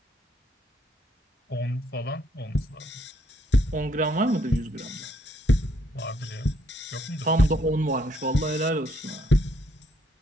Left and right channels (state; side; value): normal; both; correlation 0.71